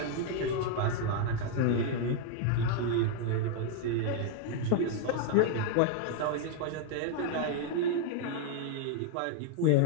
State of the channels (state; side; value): different; both; correlation 0.00